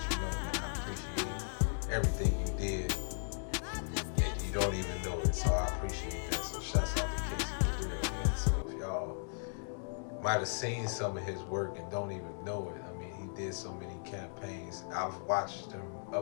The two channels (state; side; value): silent; right; digital silence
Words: you know, man, I appreciate everything you did, and you don't even know it, so I appreciate that. So shouts out to Casey Burrell, man. So if y'all might have seen some of his work and don't even know it, I mean, he did so many campaigns. I've watched him